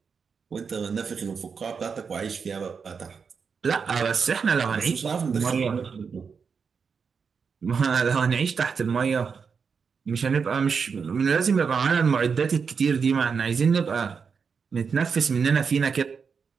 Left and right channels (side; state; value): left; quieter; 5.8 dB